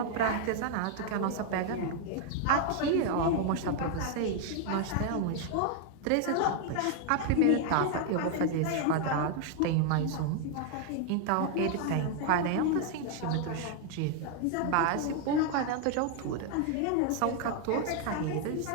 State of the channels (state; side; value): different; both; correlation 0.00